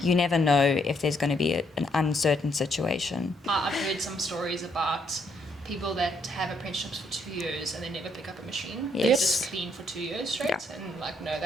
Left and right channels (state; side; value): normal; both; correlation 0.72